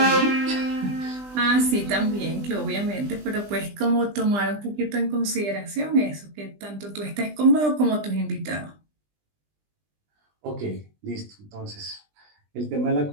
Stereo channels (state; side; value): late; left; 20 ms